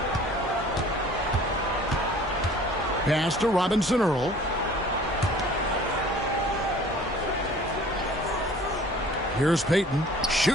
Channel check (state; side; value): normal; both; correlation 0.49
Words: Pass to Robinson Earl. Here's Payton.